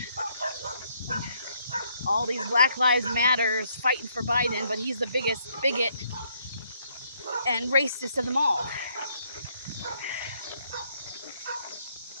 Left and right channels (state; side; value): inverted; both; correlation -0.71